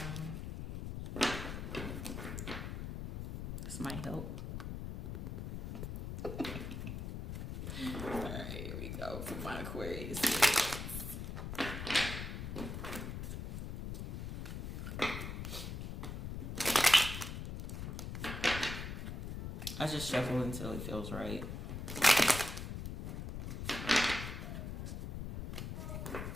But, this might help. Alright, here we go for my Aquarius. I just shuffle until it feels right.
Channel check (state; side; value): noise; left; rumble, 5 dB below the sound